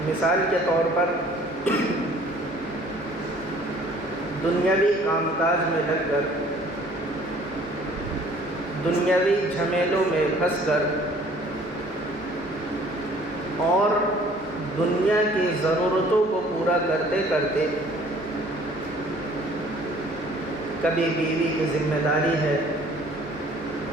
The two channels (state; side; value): normal; both; correlation 0.54